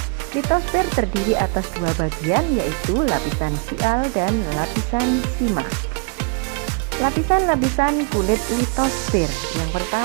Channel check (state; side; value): quieter; left; 34.0 dB